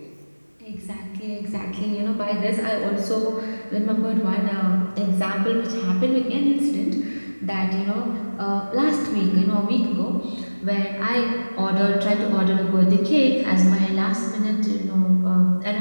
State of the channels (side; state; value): both; inverted; correlation -1.00